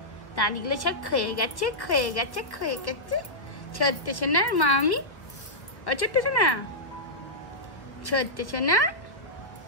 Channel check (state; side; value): late; right; 1.4 ms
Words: দাঁতগুলো সব ক্ষয়ে গেছে। ছোট্ট সোনার মা আমি। ও ছোট্ট সোনা, ছোট্ট সোনা,